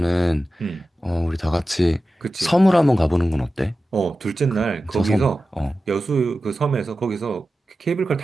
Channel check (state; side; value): normal; both; correlation 0.94